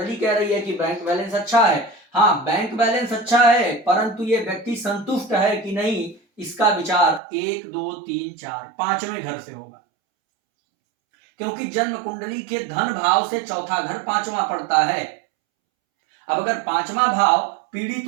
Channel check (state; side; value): drops out; left; at 7.2 s